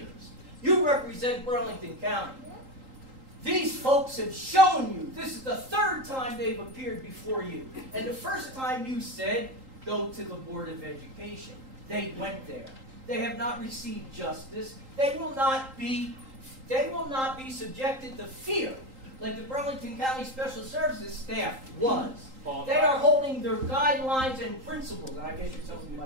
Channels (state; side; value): late; left; 3.8 ms